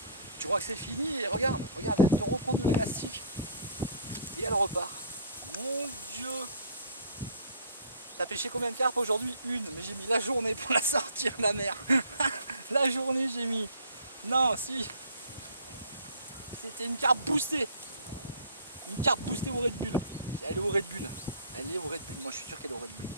Tu crois que c'est fini? Et regarde, elle te reprend de l'élastique. Et elle repart. Mon Dieu! T'as pêché combien de carpes aujourd'hui? Une, mais j'ai mis la journée pour la sortir, la mer. La journée j'ai mis. Non, si. C'était une carpe boostée. Une carpe boostée au Red Bull. Elle est au Red Bull. Elle est au Red Bull. Moi je suis sûr qu'elle est au Red Bull.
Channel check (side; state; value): both; inverted; correlation -0.52